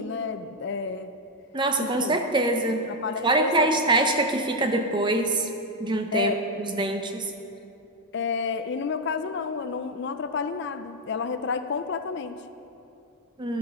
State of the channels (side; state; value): both; normal; correlation 0.03